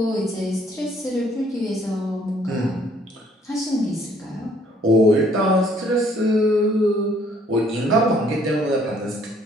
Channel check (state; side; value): normal; both; correlation 0.62